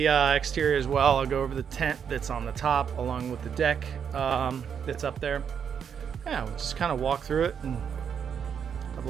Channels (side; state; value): left; quieter; 7.5 dB